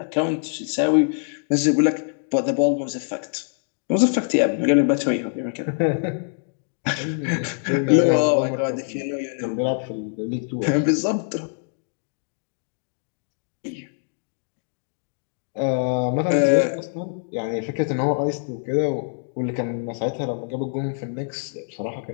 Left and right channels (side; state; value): right; silent; digital silence